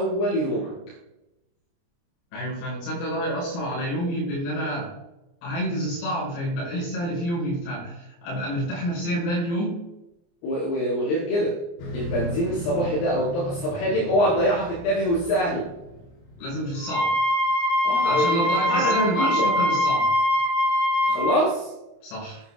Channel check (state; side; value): late; right; 29 ms